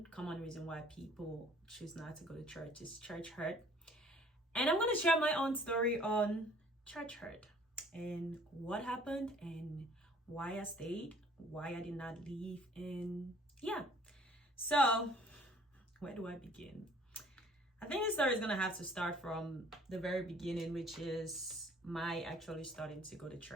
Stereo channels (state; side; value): normal; both; correlation 0.55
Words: common reason why people choose not to go to church, is church hurt. And I'm going to share my own story on church hurt and what happened and why I stayed, why I did not leave, and yeah. So where do I begin? I think the story is going to have to start from the very beginning, which is my actually starting to go to